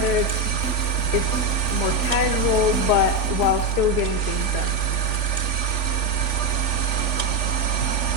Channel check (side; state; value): right; late; 3.5 ms